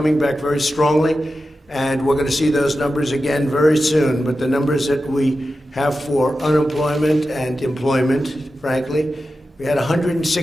back very strongly. And we're going to see those numbers again very soon. But the numbers that we have for unemployment and employment, frankly, we had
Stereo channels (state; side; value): normal; both; correlation 0.92